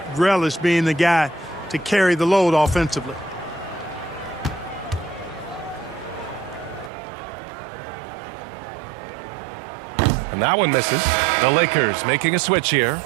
relished being the guy to carry the load offensively. And that one misses. The Lakers making a switch here.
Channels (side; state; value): left; drops out; at 6.9 s